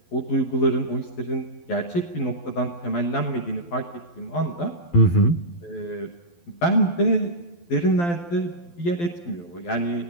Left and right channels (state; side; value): late; right; 12 ms